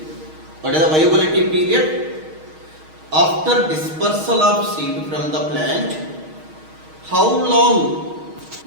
What is the viability period? After dispersal of seed from the plant, how long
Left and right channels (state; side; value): late; left; 6.4 ms